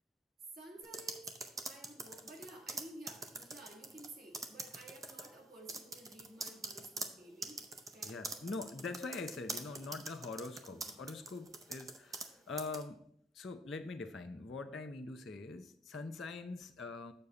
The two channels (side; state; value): both; normal; correlation 0.58